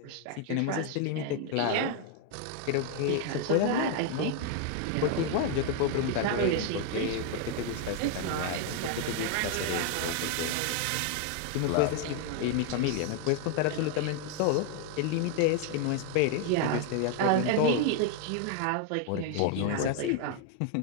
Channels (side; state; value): both; different; correlation 0.00